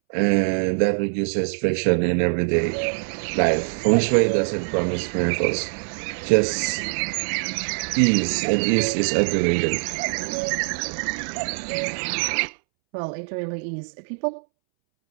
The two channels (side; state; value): left; silent; 63 dB below the other